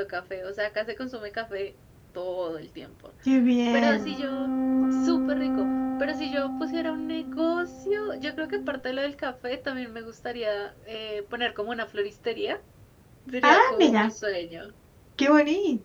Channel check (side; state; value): both; identical; correlation 1.00